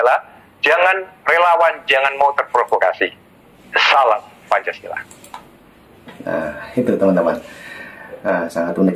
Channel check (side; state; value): both; identical; correlation 1.00